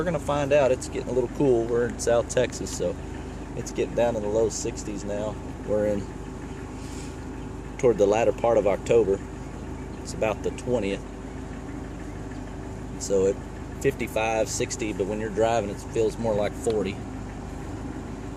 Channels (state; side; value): identical; both; correlation 1.00